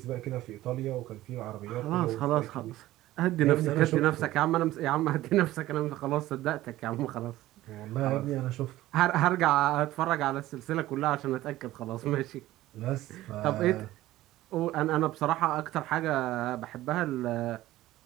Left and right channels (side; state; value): left; quieter; 15.8 dB